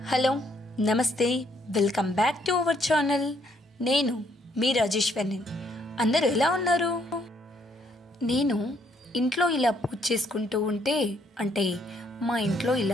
hello నమస్తే welcome back to our channel. నేను మీ రాజేశ్వరిని. అందరూ ఎలా ఉన్నారు? నేను ఇంట్లో ఇలా పూజ చేసుకుంటూ ఉంటే మా ఇంట్లో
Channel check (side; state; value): both; normal; correlation 0.70